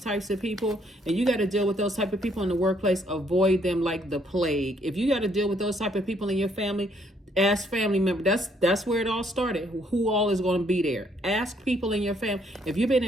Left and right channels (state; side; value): normal; both; correlation 0.68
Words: of people and you got to deal with those type of people in the workplace, avoid them like the plague. If you got to deal with those type of people in your family, ask family members. That's where it all started. Who all is going to be there? Ask people in your family. If you've been